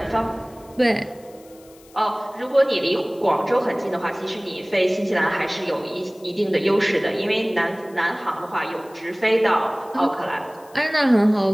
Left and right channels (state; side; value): noise; left; hiss, 27 dB below the sound